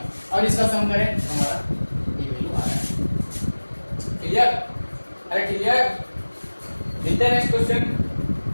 और इसका सम करें तो हमारा ये वैल्यू आ रहा है। क्लियर? अरे क्लियर? मिलते हैं नेक्स्ट क्वेश्चन।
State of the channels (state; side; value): inverted; both; correlation -1.00